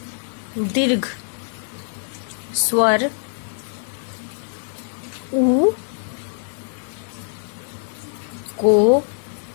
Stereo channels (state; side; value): silent; right; digital silence